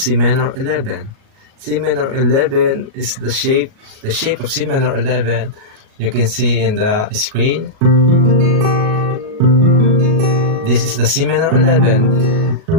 minor 11? C minor 11 is the shape of C minor 11. You can see in the screen. This is the C minor 11.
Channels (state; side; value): late; left; 37 ms